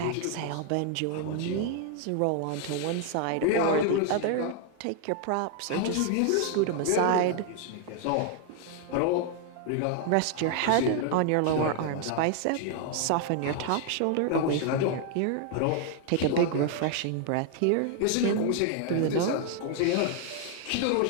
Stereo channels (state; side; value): different; both; correlation 0.00